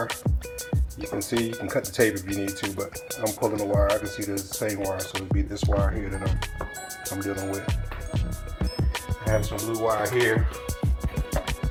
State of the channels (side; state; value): both; identical; correlation 1.00